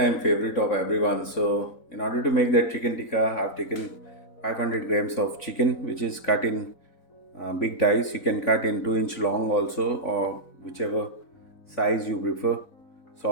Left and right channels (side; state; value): right; late; 4.0 ms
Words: favorite of everyone. So, in order to make that chicken tikka, I've taken 500 grams of chicken, which is cut in big dice. You can cut in 2-inch long also, or whichever size you prefer.